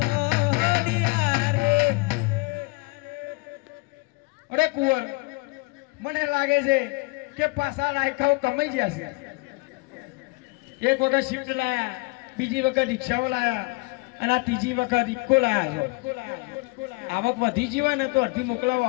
રે. અરે કુંવર, મને લાગે છે કે પાછા રાયકાઓ કમાઈ જશે. એક વખત શિફ્ટ લાયા, બીજી વખત રિક્ષાઓ લાયા, અને આ ત્રીજી વખત ઇક્કો લાયા છે. આવક વધી જીવા ને તો અડધી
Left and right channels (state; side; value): quieter; right; 26.5 dB